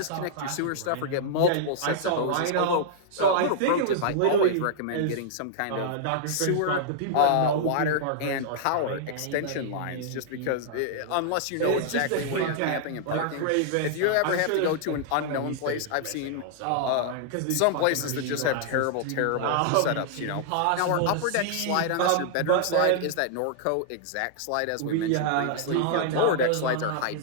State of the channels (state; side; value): different; both; correlation -0.01